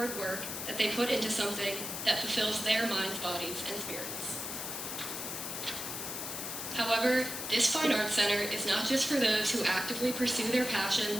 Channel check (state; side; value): noise; left; hiss, 5 dB below the sound